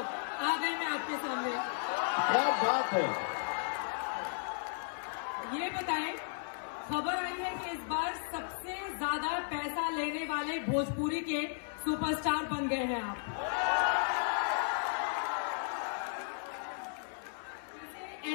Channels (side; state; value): right; silent; 55 dB below the other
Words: गए मैं आपके सामने। क्या बात है। ये बताएं, खबर आई है कि इस बार सबसे ज्यादा पैसा लेने वाले भोजपुरी के सुपरस्टार बन गए हैं आप।